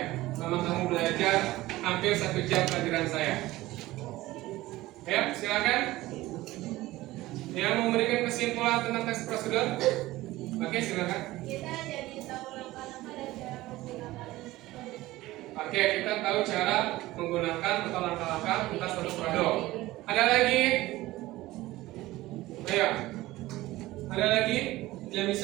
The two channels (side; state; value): left; quieter; 17.7 dB